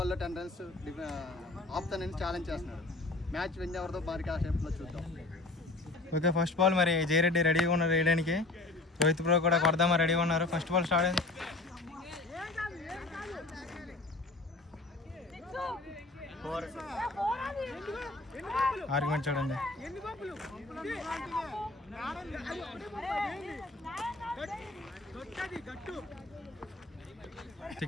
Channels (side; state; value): right; quieter; 3.1 dB